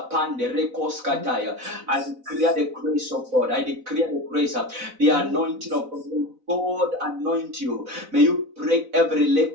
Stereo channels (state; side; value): late; left; 4.0 ms